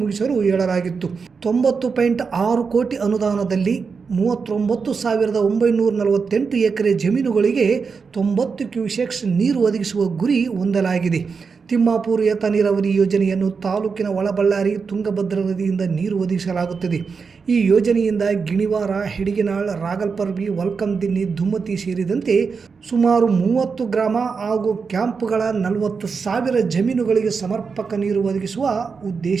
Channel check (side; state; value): left; quieter; 5.3 dB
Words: ಮುಗಿಸಲು ಹೇಳಲಾಗಿತ್ತು. 90.6 ಕೋಟಿ ಅನುದಾನದಲ್ಲಿ 39,948 ಎಕರೆ ಜಮೀನುಗಳಿಗೆ 90 ಕ್ಯೂಸೆಕ್ಸ್ ನೀರು ಒದಗಿಸುವ ಗುರಿ ಹೊಂದಲಾಗಿದೆ. ತಿಮ್ಮಾಪುರ ಏತ ನೀರಾವರಿ ಯೋಜನೆಯನ್ನು ತಾಲೂಕಿನ ಒಳಬಳ್ಳಾರಿ ತುಂಗಭದ್ರಾ ನದಿಯಿಂದ ನೀರು ಒದಗಿಸಲಾಗುತ್ತದೆ. ಈ ಯೋಜನೆಯಿಂದ ಗಿಣಿವಾರ, ಹೆಡಿಗೆನಾಳ್, ರಾಗಲ್ಪರ್ವಿ, ವಲ್ಕಂದಿನ್ನಿ, ದುಮ್ಮತಿ ಸೇರಿದಂತೆ ಸುಮಾರು 30 ಗ್ರಾಮ ಹಾಗೂ ಕ್ಯಾಂಪ್ಗಳ 40,000 ಜಮೀನುಗಳಿಗೆ ಸಮರ್ಪಕ ನೀರು ಒದಗಿಸುವ